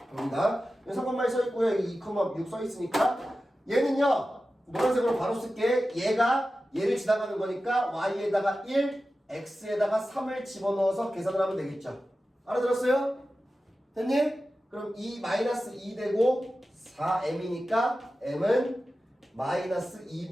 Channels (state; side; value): normal; both; correlation 0.94